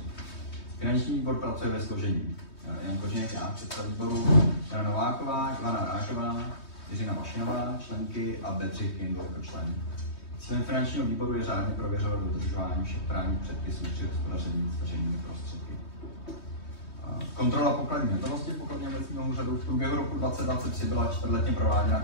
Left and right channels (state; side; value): late; right; 3.2 ms